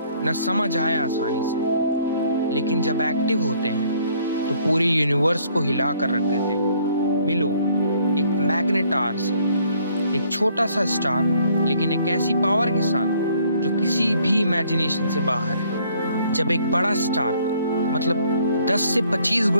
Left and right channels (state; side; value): inverted; both; correlation -0.63